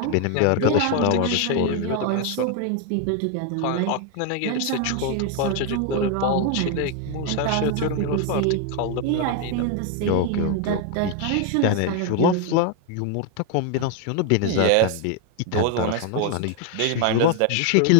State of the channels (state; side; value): different; both; correlation 0.01